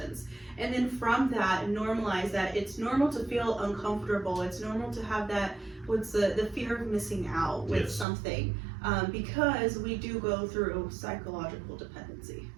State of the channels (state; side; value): drops out; left; at 8.1 s